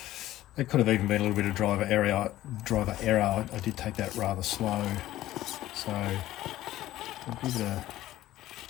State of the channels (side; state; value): right; quieter; 14.8 dB